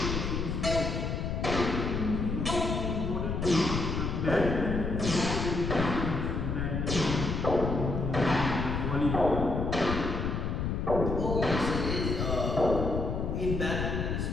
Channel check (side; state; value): left; noise; rumble, 1 dB below the sound